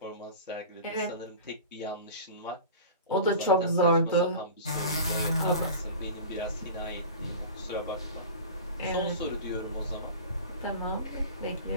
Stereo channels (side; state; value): both; inverted; correlation -0.35